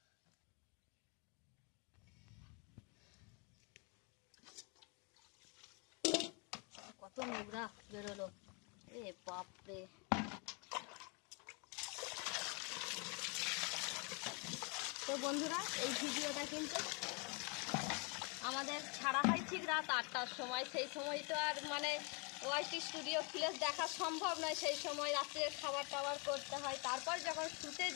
কত নোংরা বেরোলো, এ বাপরে। তো বন্ধুরা, এই ভিডিওটা কিন্তু আমাদের ছাড়া হয় ঠিক রাত 8টার সময়। সেই সময় তো আর মানে ওয়াইটি স্টুডিও ফ্লেশ দেখা সম্ভব নয়, সেই সময় রাত্রে খাবার টাবার করতে হয়। তারপর যখন শুতে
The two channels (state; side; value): quieter; right; 33.5 dB